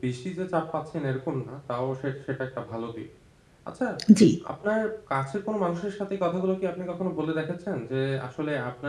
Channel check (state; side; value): identical; both; correlation 1.00